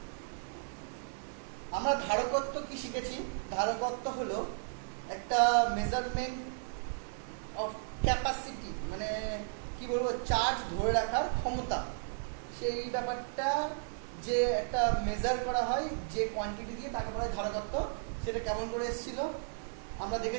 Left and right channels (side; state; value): left; silent; digital silence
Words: আমরা ধারকত্ব কি শিখেছি? ধারকত্ব হলো একটা মেজারমেন্ট অফ ক্যাপাসিটি, মানে কি বলবো, চার্জ ধরে রাখার ক্ষমতা। সেই ব্যাপারটা যে একটা মেজার করা হয় যে কোয়ান্টিটি দিয়ে, তাকে বলা হয় ধারকত্ব। সেটা কেমন করে এসেছিল আমরা